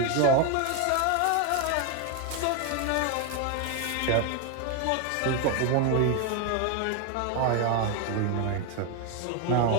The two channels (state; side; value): different; both; correlation 0.01